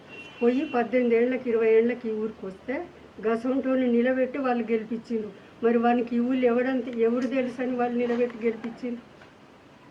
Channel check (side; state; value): both; identical; correlation 1.00